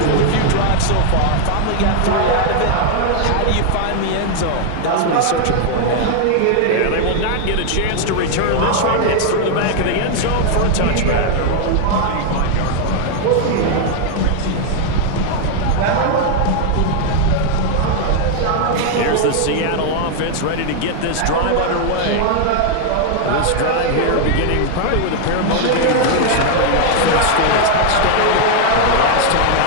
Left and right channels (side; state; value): both; different; correlation 0.00